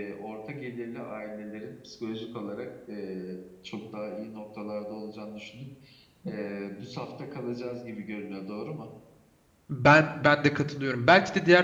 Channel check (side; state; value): both; identical; correlation 1.00